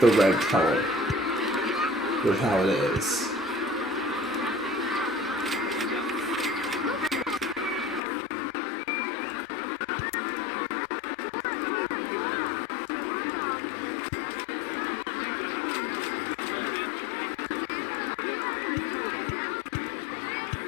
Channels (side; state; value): right; drops out; at 8.0 s